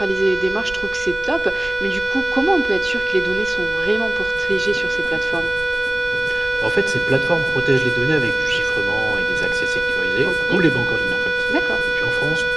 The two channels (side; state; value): right; noise; rumble, 16 dB below the sound